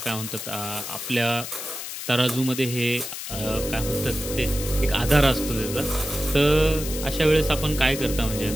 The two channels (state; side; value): noise; left; hiss, 8 dB below the sound